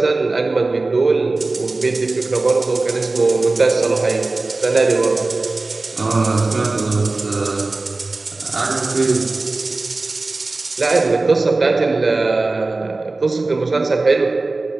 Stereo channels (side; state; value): left; quieter; 3.4 dB